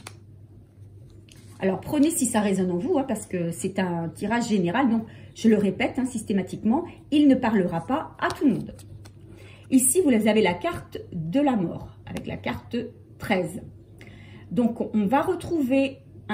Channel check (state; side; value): identical; both; correlation 1.00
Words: Alors, prenez si ça résonne en vous, hein, parce que c'est un tirage général, donc je le répète hein, systématiquement, il ne parlera pas à tout le monde. Ici, vous avez la carte de la mort, avec la carte 13. Donc, on va retrouver